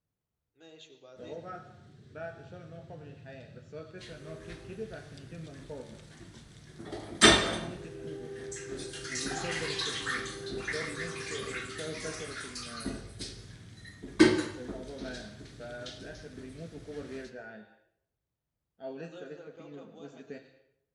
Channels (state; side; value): identical; both; correlation 1.00